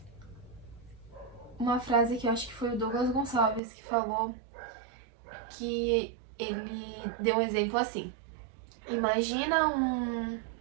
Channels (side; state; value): left; drops out; at 3.6 s